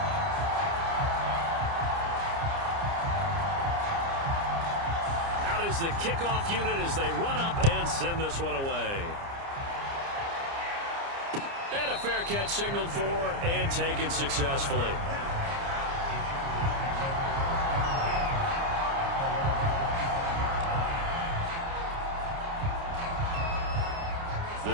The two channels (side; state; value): left; late; 29 ms